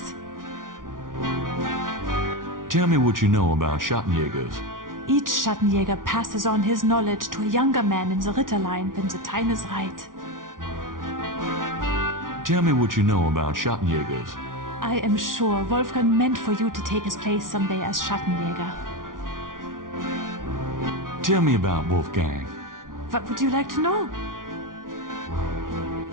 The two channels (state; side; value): late; left; 0.89 ms